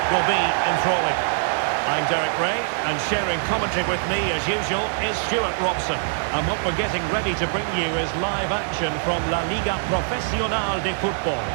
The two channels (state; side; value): silent; left; digital silence